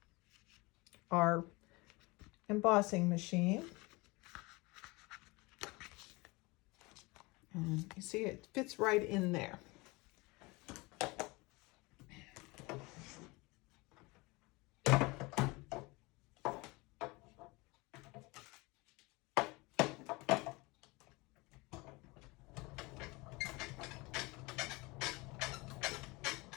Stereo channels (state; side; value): quieter; right; 24.5 dB